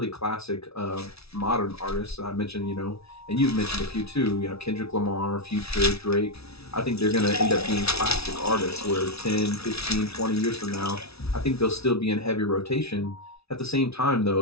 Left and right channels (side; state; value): right; late; 0.78 ms